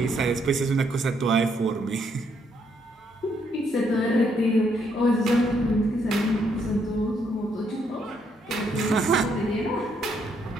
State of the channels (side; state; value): both; normal; correlation 0.73